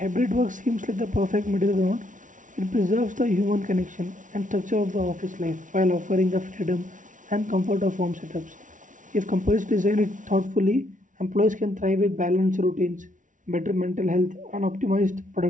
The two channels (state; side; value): late; left; 0.37 ms